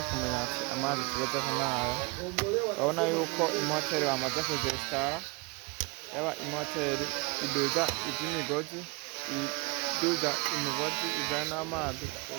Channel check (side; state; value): left; quieter; 26.8 dB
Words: kumenya ati amazi tugezeho n'aya. Babona yuko imoteri bamaze kuzesitara, yaba imoteri iduza iby'imigozi, iduza imigozi ijana n'amazi